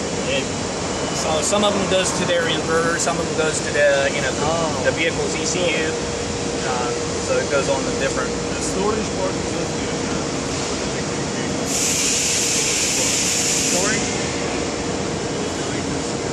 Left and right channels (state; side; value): identical; both; correlation 1.00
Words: so some of them goes to their inverter, some of them goes to the the vehicle's ECU. so it goes on the different. The storage part is just Storage?